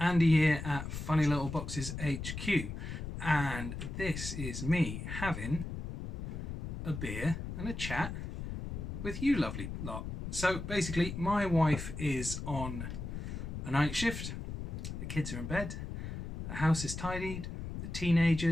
here at Funny Little Boxes HQ, and this is me having a beer and a chat with you lovely lot. So basically, my wife is on a night shift, the kids are in bed, the house is tidied, the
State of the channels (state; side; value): noise; left; rumble, 6 dB below the sound